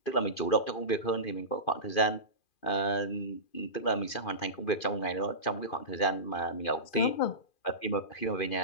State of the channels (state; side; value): late; right; 2.4 ms